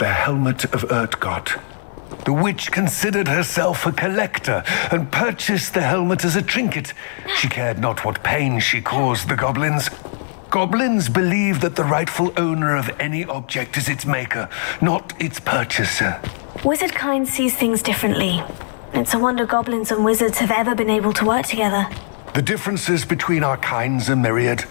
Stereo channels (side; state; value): right; silent; digital silence